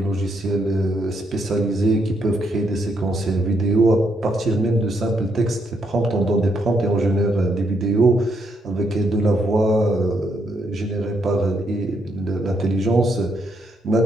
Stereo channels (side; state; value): both; normal; correlation 0.76